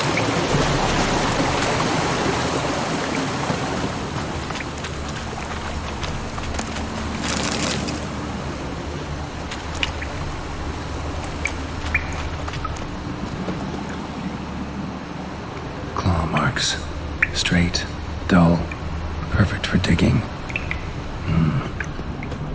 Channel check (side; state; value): both; identical; correlation 1.00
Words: Claw marks. Straight, dull, perfect for digging.